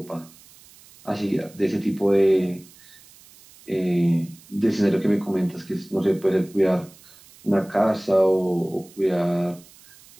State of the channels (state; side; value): noise; right; hiss, 24 dB below the sound